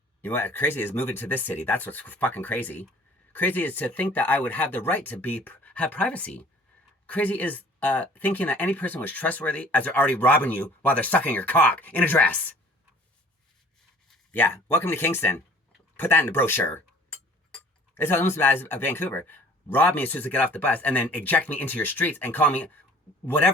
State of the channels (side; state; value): both; normal; correlation 0.51